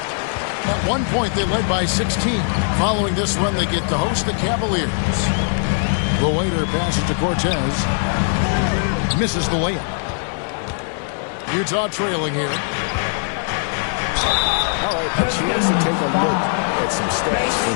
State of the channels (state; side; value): silent; right; digital silence